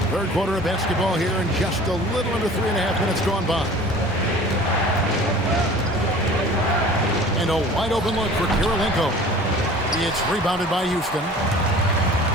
Third quarter of basketball here, and just a little under 3.5 minutes gone by. And a wide open look for Kirilenko. It's rebounded by Houston.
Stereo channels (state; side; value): normal; both; correlation 0.44